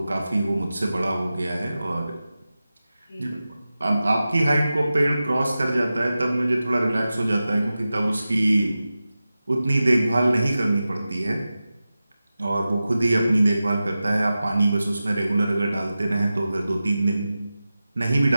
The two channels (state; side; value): inverted; both; correlation -0.94